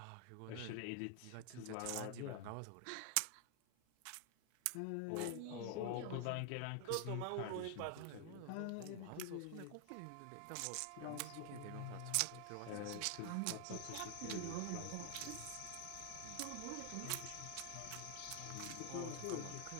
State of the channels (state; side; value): different; both; correlation 0.00